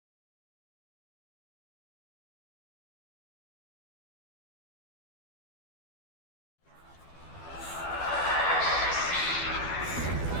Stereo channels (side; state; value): right; late; 12 ms